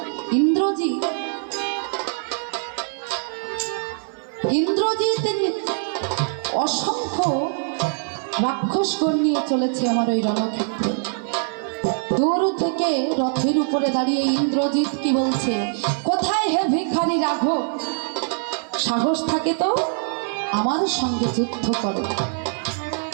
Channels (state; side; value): silent; left; 63 dB below the other